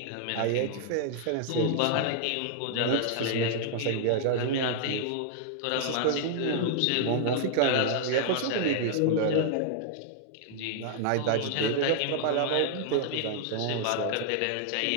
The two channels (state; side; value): different; both; correlation -0.01